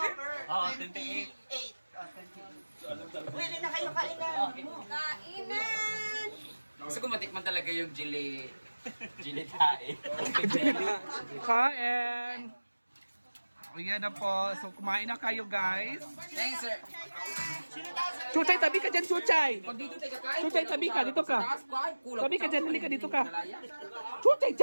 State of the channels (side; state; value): both; inverted; correlation -1.00